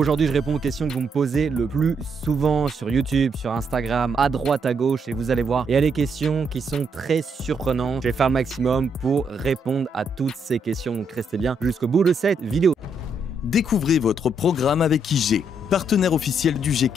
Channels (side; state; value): both; normal; correlation 0.75